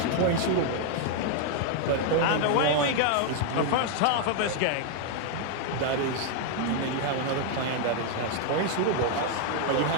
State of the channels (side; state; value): both; different; correlation 0.00